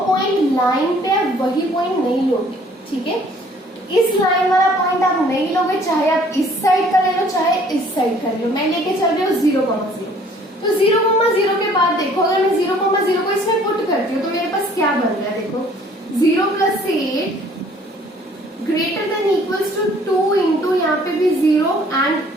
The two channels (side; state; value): both; normal; correlation 0.57